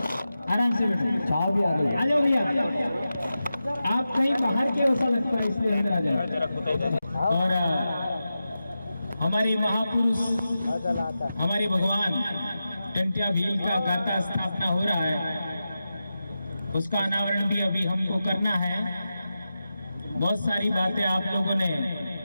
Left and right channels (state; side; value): inverted; both; correlation -0.92